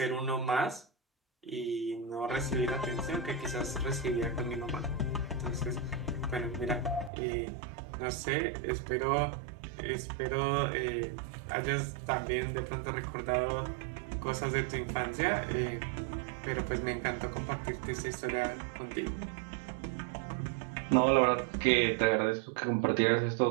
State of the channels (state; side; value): drops out; left; at 7.1 s